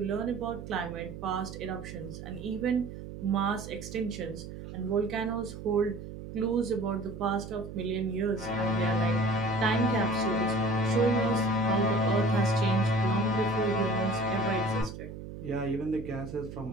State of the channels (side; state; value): right; noise; hum, 11 dB below the sound